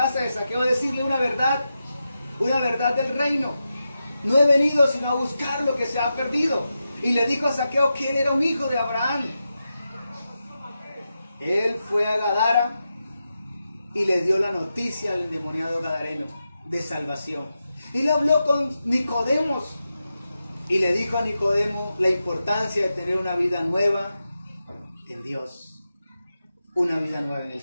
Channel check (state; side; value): inverted; both; correlation -0.89